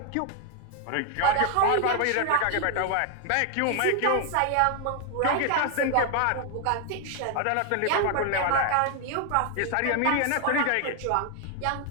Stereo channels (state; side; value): different; both; correlation 0.00